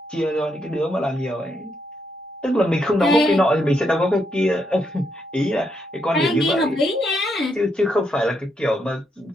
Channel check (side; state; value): both; normal; correlation 0.78